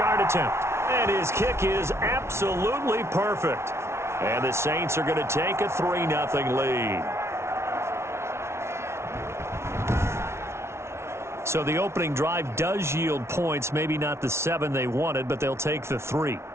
attempt. And his kick is absolutely perfect. And the Saints are going to take a 3-0 lead. So the opening drive does yield points, maybe not the 7 they wanted, but they'll take the 3.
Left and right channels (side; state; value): left; late; 0.13 ms